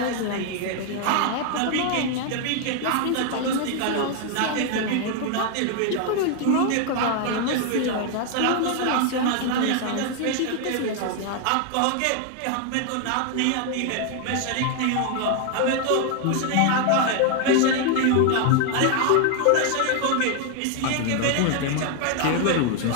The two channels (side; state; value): both; different; correlation 0.00